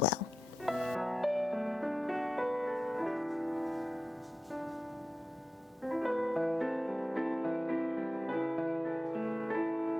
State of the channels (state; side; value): normal; both; correlation 0.91